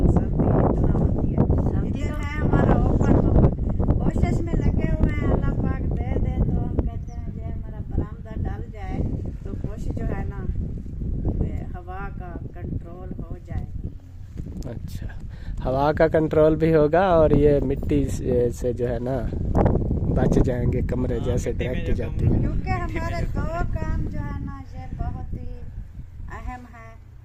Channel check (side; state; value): both; identical; correlation 1.00